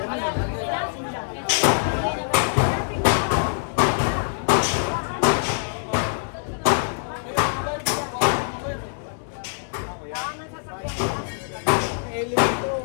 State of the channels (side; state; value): right; silent; digital silence